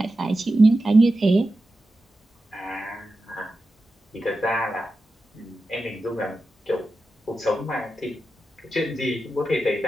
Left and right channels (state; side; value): normal; both; correlation 0.92